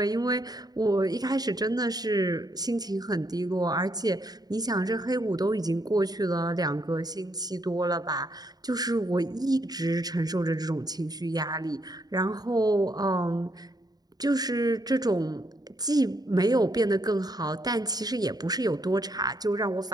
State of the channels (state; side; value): late; left; 0.19 ms